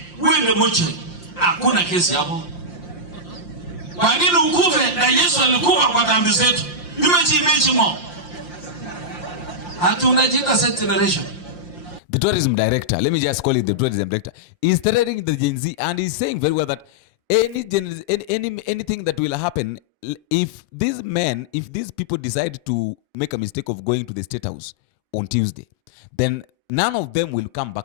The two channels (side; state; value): right; late; 5.7 ms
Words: Wewe ndio mocho. Hakuna kesi hapo. Kwa nini ukufe na Yesu alikufa kwa dhambi zetu? Nimechi mo. Hatu unajiita set generation. The tourism director, let me just call it the tourism director, is threatening the Gen Z, and he's saying very well that anything that will happen if these people decide to make a mistake of going to the State House on Tuesday, then none of them will come